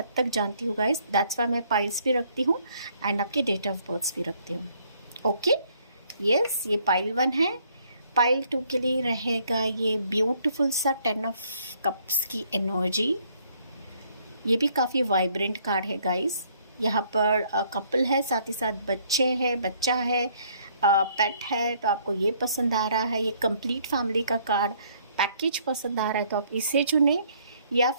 तक जानती हूँ गाइस। दैट्स वाई मैं पाइल्स भी रखती हूँ एंड आपके डेट ऑफ बर्थ भी रखती हूँ। ओके, यस, ये पाइल 1 है। पाइल 2 के लिए रहेगा ये ब्यूटीफुल सा 10 ऑफ कप्स की एनर्जी। ये भी काफ़ी वाइब्रेंट कार्ड है गाइस। यहाँ पर कपल है, साथ ही साथ बच्चा है, पेट है, तो आपको ये पसंद आ रहा है। ये कंप्लीट फैमिली का कार्ड पैकेज पसंद आ रहा है, तो आप इसे चुने या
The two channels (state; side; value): inverted; both; correlation -0.65